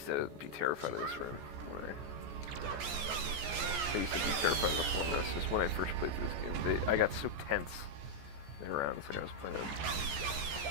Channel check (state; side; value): late; left; 14 ms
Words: to be terrified of this room. I used to be terrified of the floor mess, just when I first played through this game. I got so tense around, it's like I was playing a